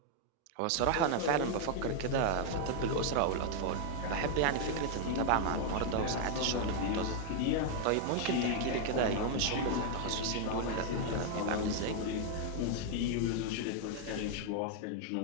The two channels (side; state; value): both; different; correlation 0.00